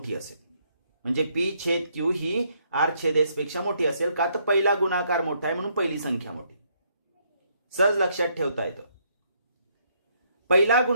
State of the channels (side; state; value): both; inverted; correlation -0.71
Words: असेल. म्हणजे P छेद Q ही R छेद S पेक्षा मोठी असेल. का? तर पहिला गुणाकार मोठा आहे म्हणून पहिली संख्या मोठी. सहज लक्षात ठेवता येतं. पहिला